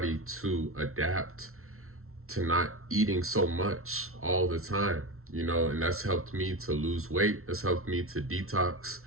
to adapt to not eating so much all the time, and that's helped me to lose weight. That's helped me to detox,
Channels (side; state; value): left; late; 0.62 ms